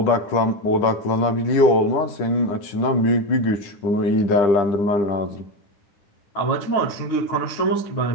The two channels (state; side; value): late; right; 10 ms